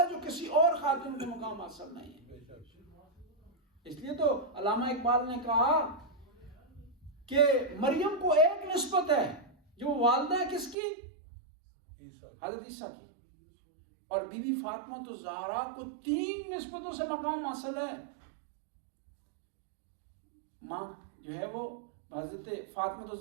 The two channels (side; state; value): left; drops out; at 10.8 s